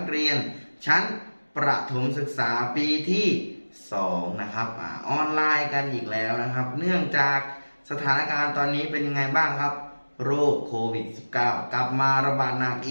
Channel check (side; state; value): both; inverted; correlation -1.00